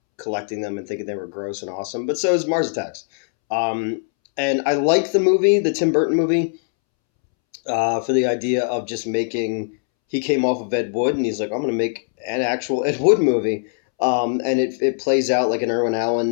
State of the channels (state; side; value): silent; right; 65 dB below the other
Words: collecting them and thinking they were gross and awesome. But so is Mars Attacks. Um, and I like the movie, the Tim Burton movie, for the idea of just making. He came off of Ed Wood, and he's like, I'm going to make an actual Ed Wood movie. And it plays out like an Irwin